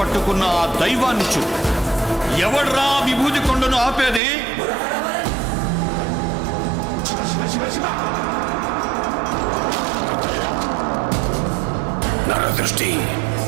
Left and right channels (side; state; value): left; drops out; at 4.2 s